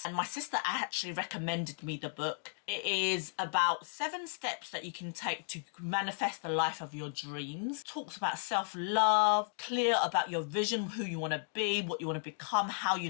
And my sister actually recommended me the book. It is about 7 steps that you can take to manifest the life of your dreams. Talks about self-love, clear about your vision, who you want to be, what you want to become, how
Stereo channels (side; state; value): right; silent; 55 dB below the other